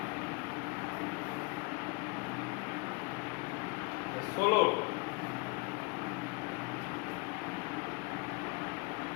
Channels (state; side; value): quieter; right; 28.7 dB